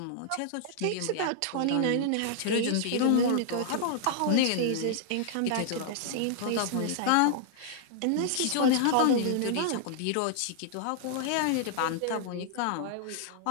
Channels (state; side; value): different; both; correlation -0.01